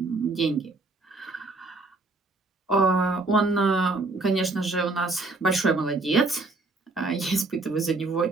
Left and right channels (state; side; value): quieter; left; 3.4 dB